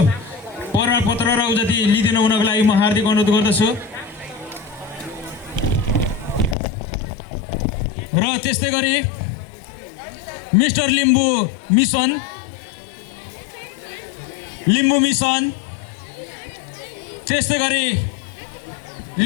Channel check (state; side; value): drops out; right; at 6.6 s